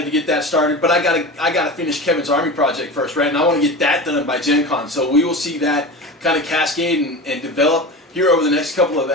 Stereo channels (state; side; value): normal; both; correlation 0.29